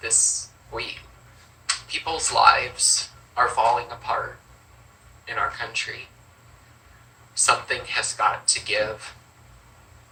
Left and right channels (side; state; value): both; identical; correlation 1.00